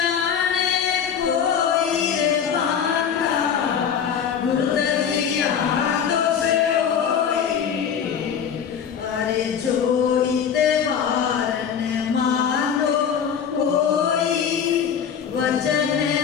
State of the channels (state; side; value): quieter; right; 7.7 dB